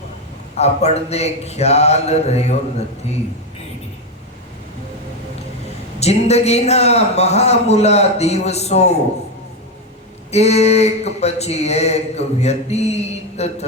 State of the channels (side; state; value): both; normal; correlation 0.10